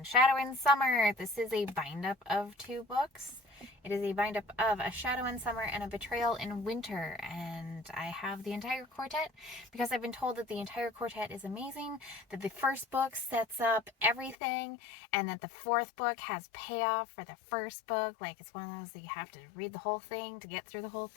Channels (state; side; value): drops out; right; at 14.4 s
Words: Shadow in Summer. This is a bind-up of 2 books. It is a bind-up of A Shadow in Summer and A Betrayal in Winter. And I have the entire quartet because I've been told that the entire quartet is amazing, that the first book sets up everything, and that the 4th book has payoff for the first book. Like, it's one of those that you have to read the whole thing to get through the whole